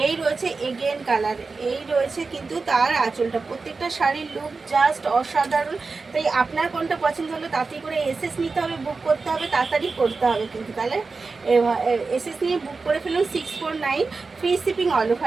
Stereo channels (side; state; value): left; quieter; 4.2 dB